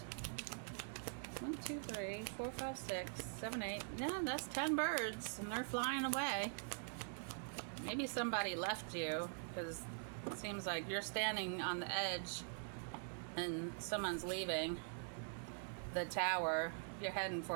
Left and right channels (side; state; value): left; silent; digital silence